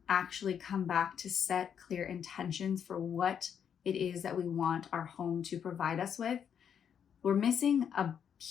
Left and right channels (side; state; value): right; quieter; 8.1 dB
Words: actually come back to set clear intentions for what it is that we want our home to provide us with, we're missing a